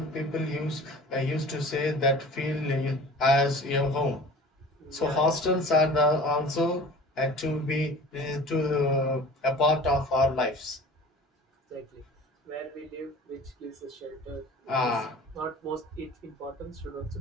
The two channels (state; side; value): normal; both; correlation 0.42